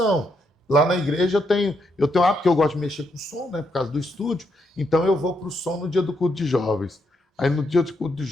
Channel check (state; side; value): normal; both; correlation 0.78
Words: Lá na igreja eu tenho porque eu gosto de mexer com som, né, por causa do estúdio, então eu vou para o som no dia do culto de jovens. Aí no dia do culto de